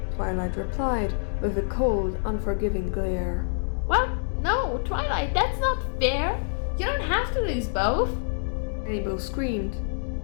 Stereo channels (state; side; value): silent; right; digital silence